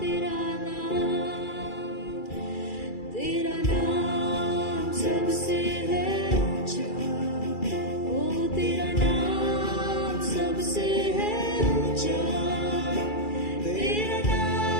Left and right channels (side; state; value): right; late; 2.3 ms